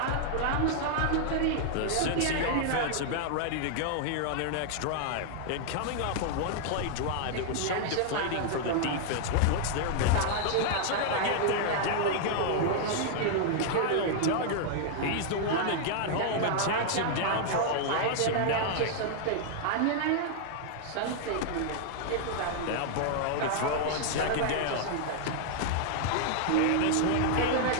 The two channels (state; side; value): different; both; correlation 0.00